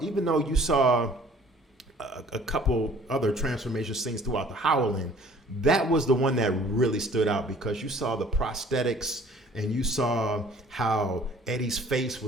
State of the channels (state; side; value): normal; both; correlation 0.53